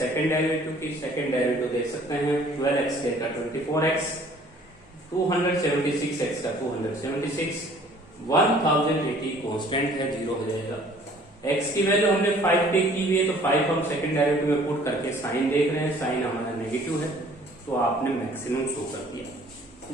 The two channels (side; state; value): both; normal; correlation 0.54